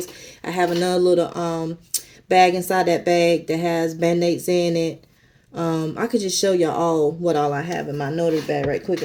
I have another little bag inside that bag that has Band-Aids in it. I could just show y'all all what all I have in my notary bag right quick.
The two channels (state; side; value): identical; both; correlation 1.00